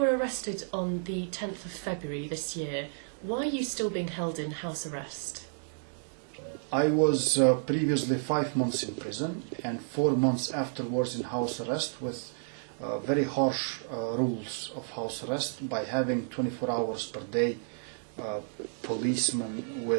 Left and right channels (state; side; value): silent; left; digital silence